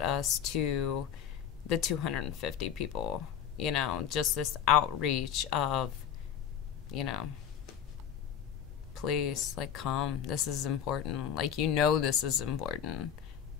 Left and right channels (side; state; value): right; quieter; 8.9 dB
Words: us to the 250 people, just this outreach of, please, like, come. This is important. Like, this is important.